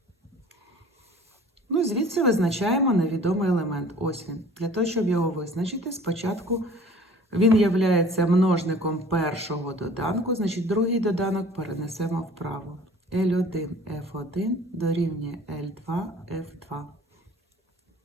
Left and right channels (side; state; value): both; normal; correlation 0.48